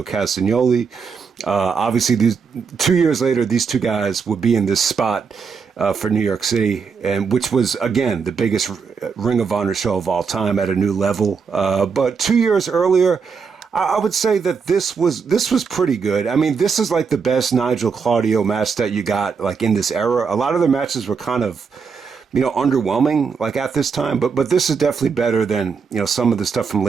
Castagnoli. Obviously, 2 years later, these two guys would be in this spot for New York City, and which was, again, the biggest Ring of Honor show of all time at a new level. But 2 years earlier, I would say that this was pretty good. This is like the best Nigel Claudio match that you got like in this era. A lot of the matches were kind of underwhelming like at this time, but this is definitely better than, some of the stuff from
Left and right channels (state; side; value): quieter; left; 5.7 dB